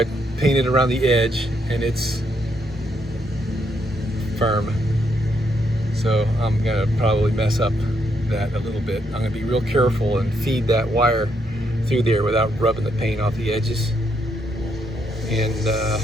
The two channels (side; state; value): both; normal; correlation 0.76